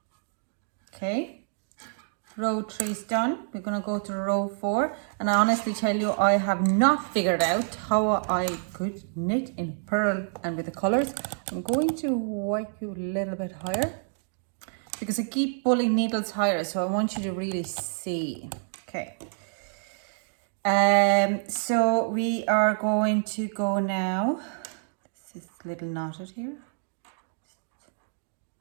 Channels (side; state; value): left; silent; digital silence